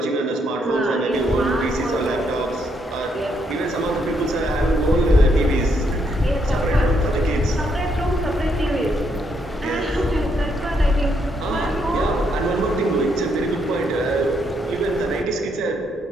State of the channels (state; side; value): normal; both; correlation 0.75